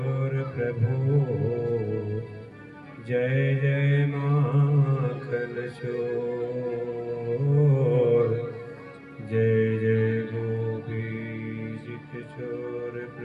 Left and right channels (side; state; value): both; identical; correlation 1.00